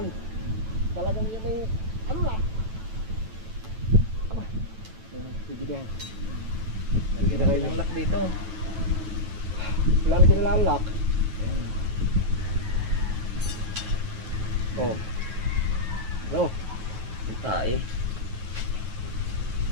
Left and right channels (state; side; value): late; left; 9.1 ms